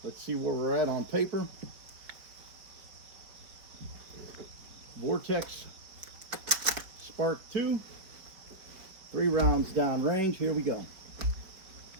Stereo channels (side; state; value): left; late; 4.6 ms